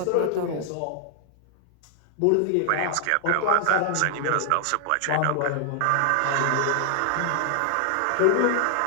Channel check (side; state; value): both; different; correlation 0.00